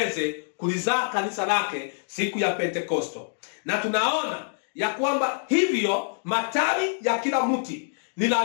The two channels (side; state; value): right; silent; digital silence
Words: kulizaa kanisa lake siku ya Pentekosto. Na tunaona ya kwamba hivyo matawi ya kila mti ni